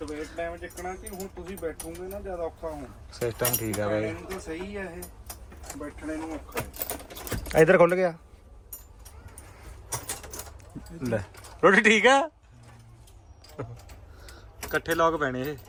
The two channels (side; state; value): both; identical; correlation 1.00